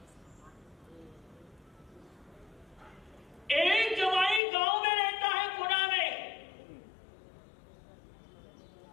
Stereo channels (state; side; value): drops out; right; at 4.4 s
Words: एक जमाई गांव में रहता है, पुणे में।